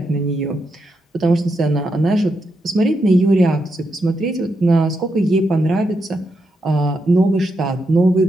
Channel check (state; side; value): normal; both; correlation 0.83